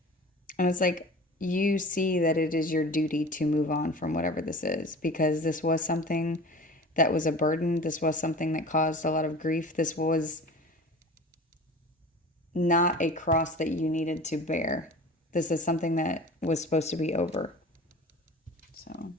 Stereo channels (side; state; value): both; normal; correlation 0.39